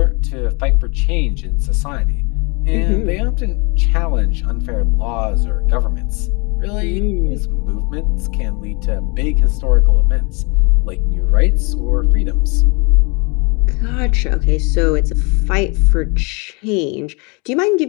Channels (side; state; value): right; quieter; 30.7 dB